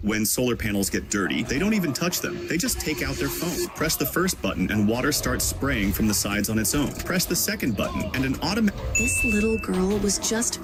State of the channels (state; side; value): identical; both; correlation 1.00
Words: when solar panels get dirty, they don't even touch them. They just take out their phone. Press the first button and water starts spraying from the sides on its own. Press the second button and an automatic... This little girl was just